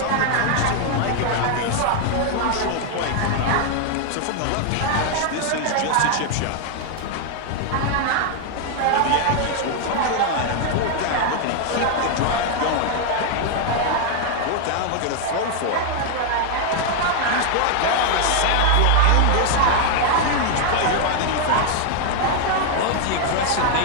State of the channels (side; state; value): both; different; correlation 0.00